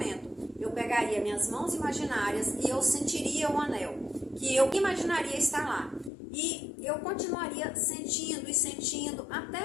Eu pegaria minhas mãos imaginárias e eu sentiria o anel, que eu imaginaria estar lá. E eu continuaria sentindo e sentindo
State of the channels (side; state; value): right; drops out; at 6.1 s